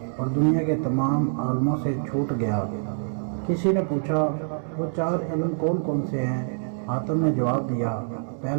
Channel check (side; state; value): left; silent; digital silence